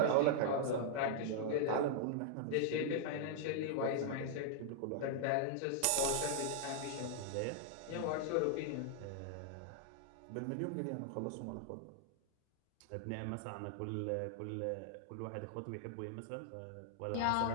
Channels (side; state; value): both; different; correlation -0.01